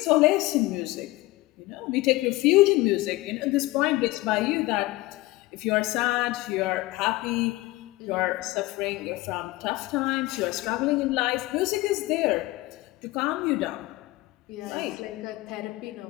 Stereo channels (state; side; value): quieter; right; 19.6 dB